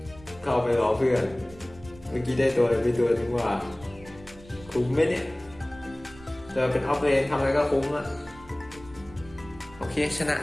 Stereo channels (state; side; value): noise; right; rumble, 21 dB below the sound